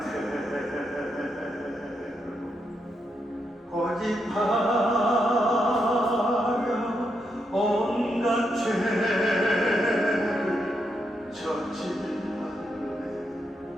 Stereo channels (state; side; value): normal; both; correlation 0.81